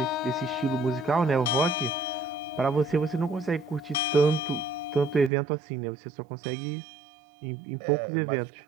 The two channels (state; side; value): drops out; left; at 5.3 s